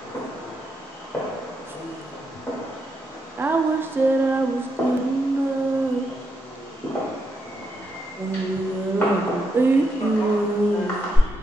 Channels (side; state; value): both; normal; correlation 0.82